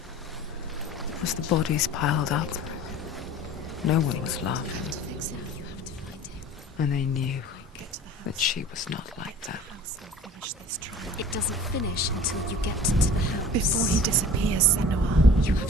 as the bodies piled up, no one was laughing. And they knew that she was not like that. It doesn't finish until you get to the house. Before he disappears, senua. You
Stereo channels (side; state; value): both; normal; correlation 0.43